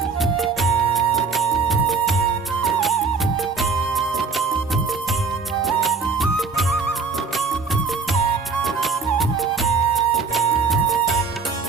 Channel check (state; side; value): quieter; left; 5.0 dB